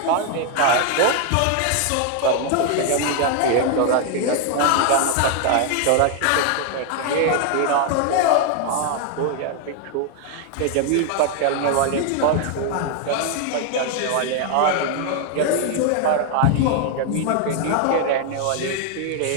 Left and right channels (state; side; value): different; both; correlation 0.00